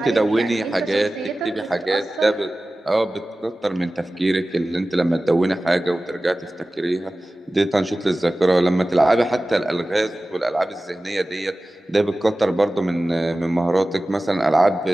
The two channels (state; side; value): normal; both; correlation 0.96